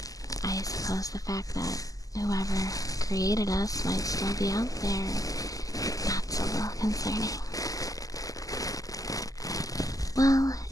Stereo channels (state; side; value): late; right; 0.17 ms